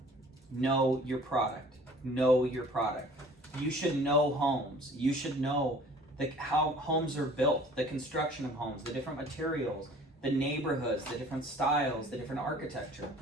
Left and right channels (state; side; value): normal; both; correlation 0.50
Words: Know your product. Know your product. You should know homes. You should know how homes are built, the construction of homes, the different materials, the neighborhoods, the different styles, the different architecture.